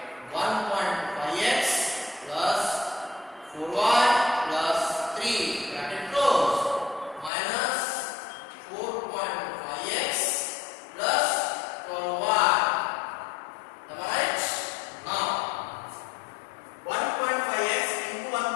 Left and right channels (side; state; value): right; drops out; at 7.3 s